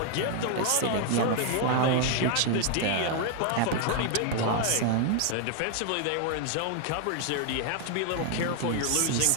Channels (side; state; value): both; different; correlation 0.00